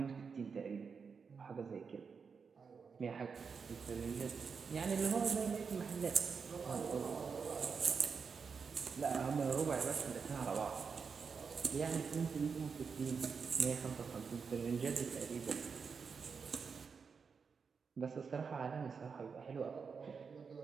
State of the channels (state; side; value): quieter; left; 5.7 dB